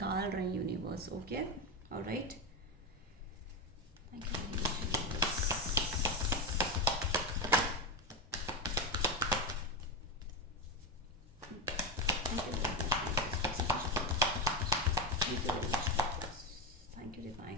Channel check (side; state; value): both; normal; correlation 0.12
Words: रहे हैं universe. Okay, alright. Thank you divine.